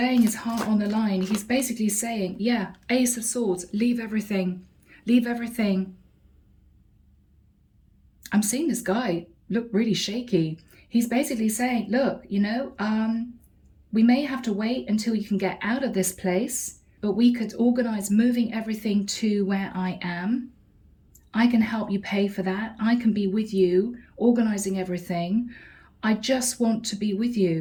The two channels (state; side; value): identical; both; correlation 1.00